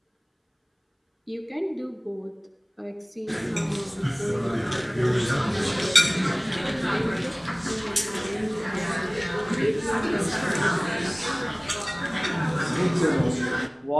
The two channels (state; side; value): identical; both; correlation 1.00